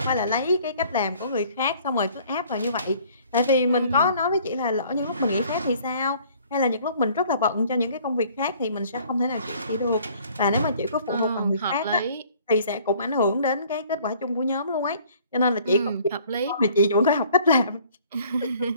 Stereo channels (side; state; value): both; inverted; correlation -0.56